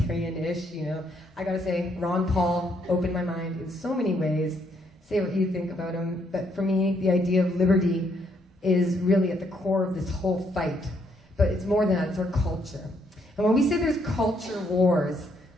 you know. I gotta say, Ron Paul opened my mind in so many ways. Say what you think about him. But for me, the idea of liberty is really at the core of this whole fight. But it's more than that, it's our culture. And when we say there's culture wars,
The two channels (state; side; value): normal; both; correlation 0.72